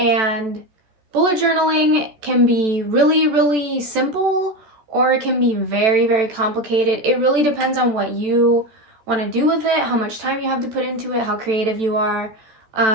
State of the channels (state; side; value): late; left; 14 ms